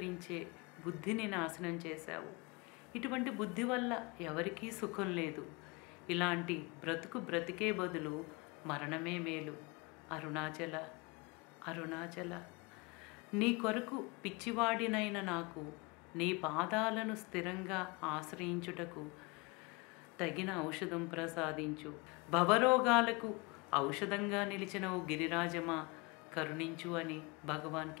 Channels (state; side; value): quieter; right; 27.7 dB